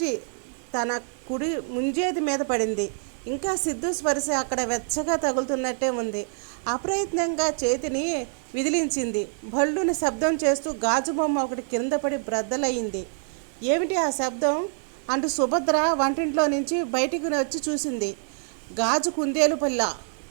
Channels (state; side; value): silent; left; 61 dB below the other